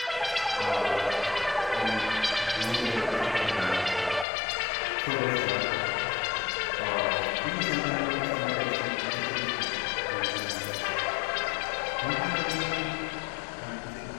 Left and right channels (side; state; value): right; drops out; at 4.2 s